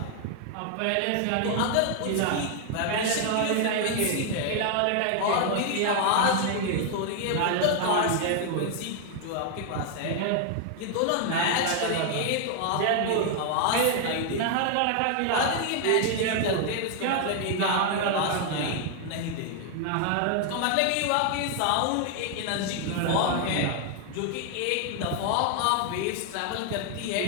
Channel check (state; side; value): different; both; correlation 0.00